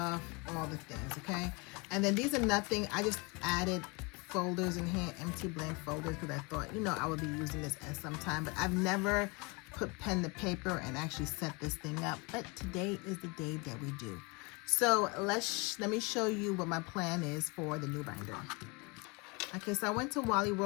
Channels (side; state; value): right; quieter; 28.8 dB